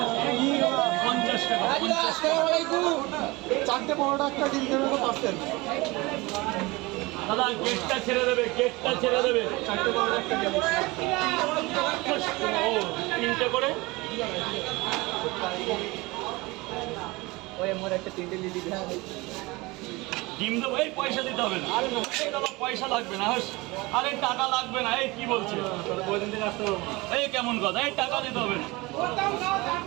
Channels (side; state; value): left; quieter; 23.1 dB